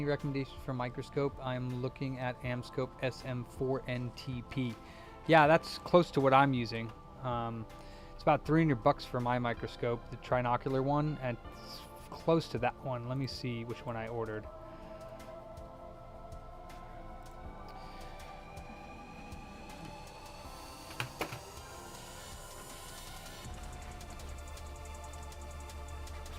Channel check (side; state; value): both; identical; correlation 1.00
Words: recommendations for microscope? I'm looking at Amscope SM4NTP. Yeah, that's close to what I'm using. It's about $300 for my microscope, the trinocular one, and it's close to that one. Let me see which one I ordered.